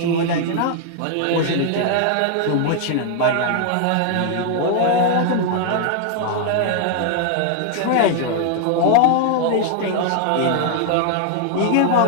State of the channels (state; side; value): different; both; correlation 0.00